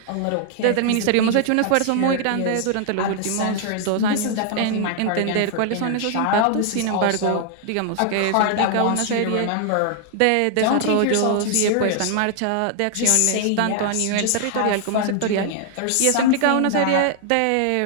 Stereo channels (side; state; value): both; different; correlation 0.00